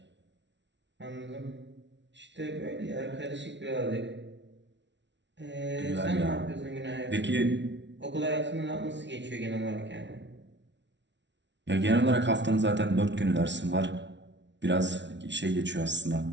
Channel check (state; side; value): late; left; 0.52 ms